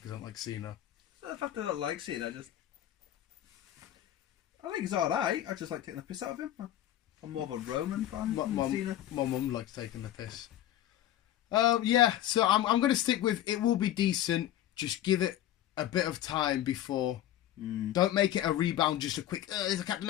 because I don't like Cena. The fact that I don't like Cena, I think he's alright. I just like taking the piss out of him. I'm more of a Roman fan than Cena. My mum likes taking the piss. So I'm going to stick with it will be decent. Just give it a bit of time before. Don't make it a rebound, just a quick, it's a Captain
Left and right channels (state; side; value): quieter; right; 12.6 dB